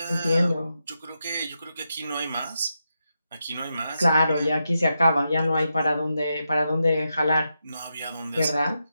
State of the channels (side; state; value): both; inverted; correlation -0.86